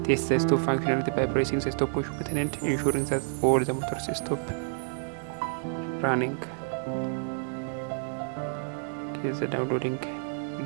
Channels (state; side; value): silent; left; digital silence